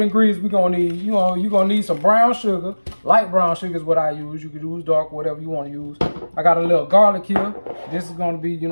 ingredients we're gonna need. You know, you're gonna need some brown sugar. Light brown sugar is what I use. You can use dark, whatever you want to use. I got a little garlic here. This is gonna be, you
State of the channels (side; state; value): both; inverted; correlation -1.00